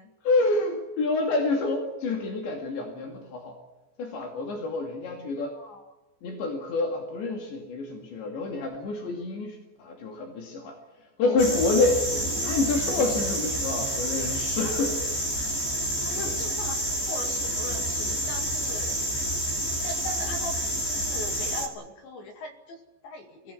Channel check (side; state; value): right; late; 14 ms